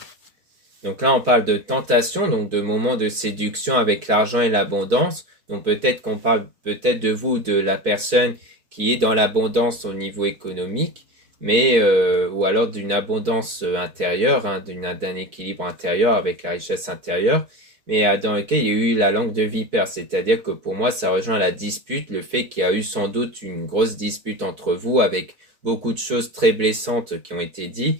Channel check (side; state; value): left; late; 4.6 ms